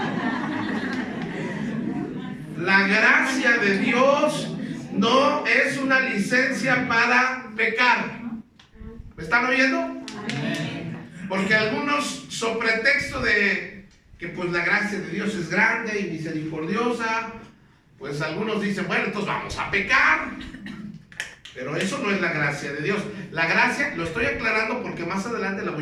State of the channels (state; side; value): identical; both; correlation 1.00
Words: La gracia de Dios no es una licencia para pecar. ¿Me están oyendo? Porque algunos, sobre pretexto de que pues la gracia de Dios es grande y misericordiosa, pues algunos dicen, bueno, entonces vamos a pecar. Pero eso no es la gracia de Dios. La gracia, lo estoy aclarando porque más adelante le